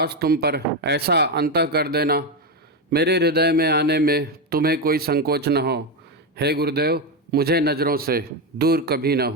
तुम पर, ऐसा अंतः कर देना, मेरे हृदय में आने में तुम्हें कोई संकोच न हो। हे गुरुदेव, मुझे नज़रों से दूर कभी न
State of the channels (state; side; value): normal; both; correlation 0.10